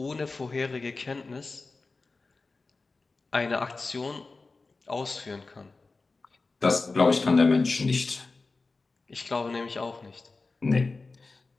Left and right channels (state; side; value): quieter; right; 3.8 dB